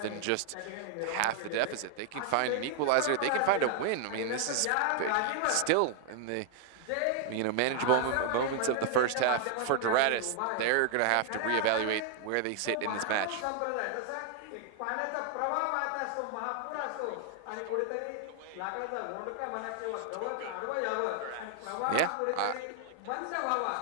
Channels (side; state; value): both; different; correlation 0.00